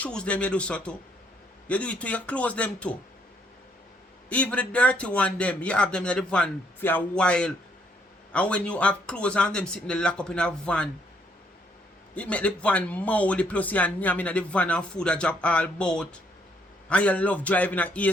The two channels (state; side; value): normal; both; correlation 0.69